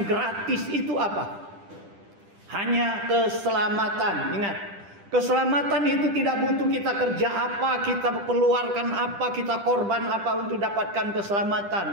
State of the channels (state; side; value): late; left; 10 ms